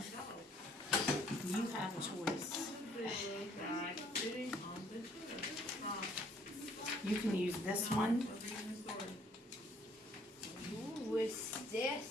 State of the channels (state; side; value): normal; both; correlation 0.63